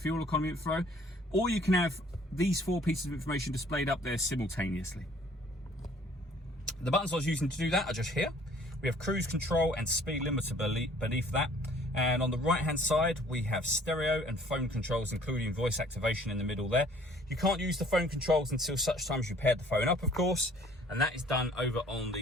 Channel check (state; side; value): normal; both; correlation 0.56